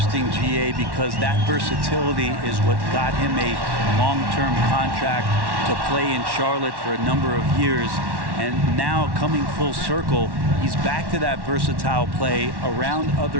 GA, because that versatility is what got him a long-term contract to play in Charlotte for a number of years. And now coming full circle, he's back to that versatile play around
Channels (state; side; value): late; left; 1.1 ms